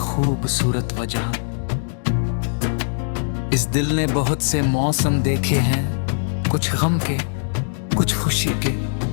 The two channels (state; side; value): silent; right; digital silence